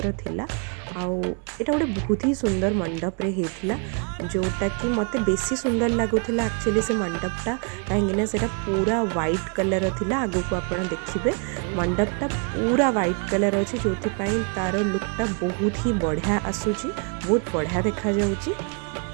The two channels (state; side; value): quieter; left; 37.7 dB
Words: थिला। आउ एटा गोटे बहुत ही सुंदर मंडप रे हेथिला जोटा कि मते बेसी सुंदर लगुला। एक्चुअली से मंडपटा कहीं सेटा पूरा वाइट कलर थिला। आगु को आपण देखिए मंडपटा पूरा वाइट कलर अच्छे जो तार लुकटा बहुत ही बढ़िया आसूची, बहुत बढ़िया देखा जाउची।